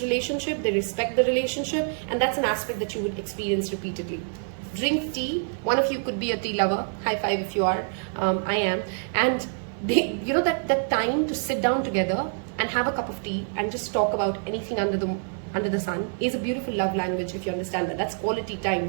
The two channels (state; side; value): silent; left; 61 dB below the other